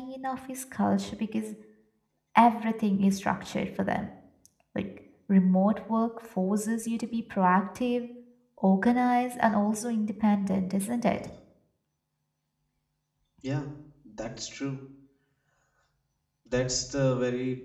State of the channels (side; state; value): both; identical; correlation 1.00